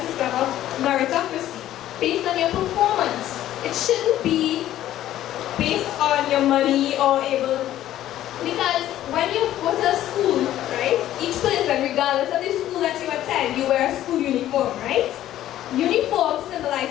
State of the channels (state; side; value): quieter; right; 13.0 dB